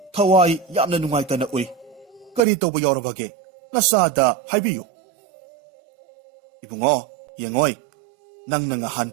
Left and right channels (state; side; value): drops out; left; at 2.4 s